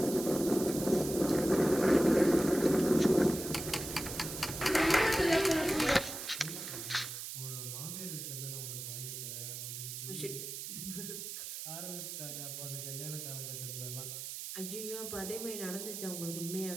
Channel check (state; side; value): noise; right; hiss, 7 dB below the sound